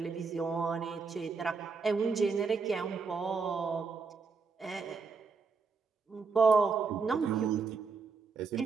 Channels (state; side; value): quieter; left; 4.9 dB